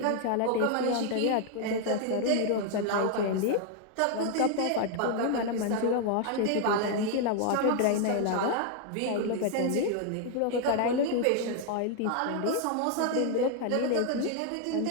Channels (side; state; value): both; different; correlation 0.00